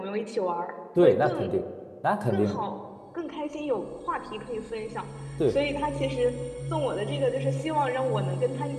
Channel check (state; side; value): identical; both; correlation 1.00